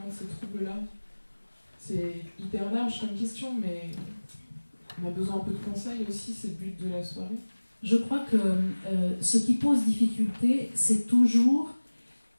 de ces troubles-là? C'est hyper large comme question, mais on a besoin un peu de conseils aussi, c'est le but de la soirée. Je crois que ce qui pose difficulté, c'est toujours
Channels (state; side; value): inverted; both; correlation -1.00